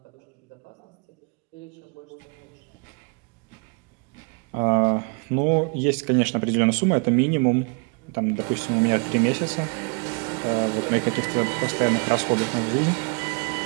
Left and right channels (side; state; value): left; quieter; 35.1 dB